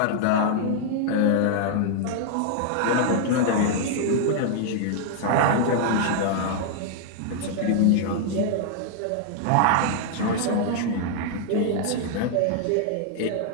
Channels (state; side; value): different; both; correlation 0.00